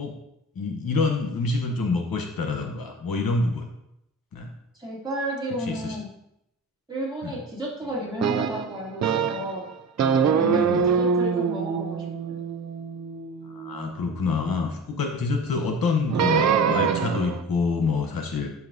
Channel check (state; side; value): normal; both; correlation 0.34